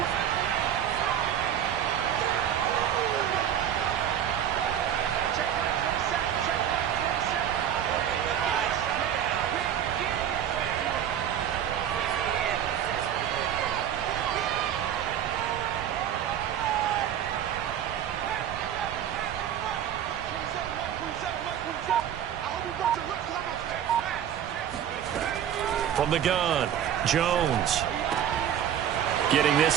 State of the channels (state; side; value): quieter; left; 9.8 dB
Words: From the gun, Jones. Getting